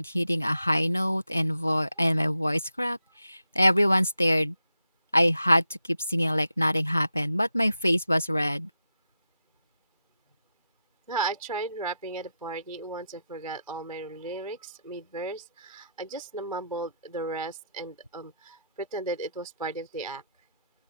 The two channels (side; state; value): both; inverted; correlation -0.86